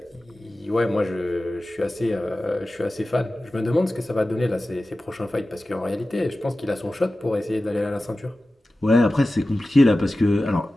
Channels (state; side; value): normal; both; correlation 0.95